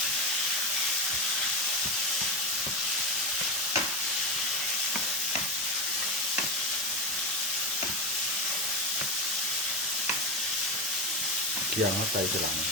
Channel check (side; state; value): both; normal; correlation 0.16